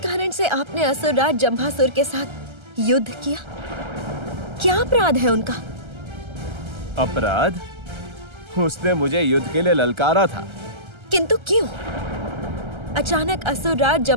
से आपने असुरराज जंभासुर के साथ युद्ध किया? क्या अपराध है उनका? अपराध? उसने मुझे युद्ध के लिए ललकारा था। किंतु क्यों? अचानक असुरराज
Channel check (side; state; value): left; late; 1.3 ms